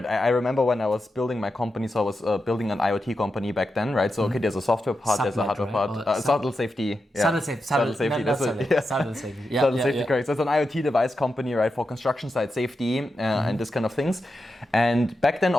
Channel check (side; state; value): both; normal; correlation 0.88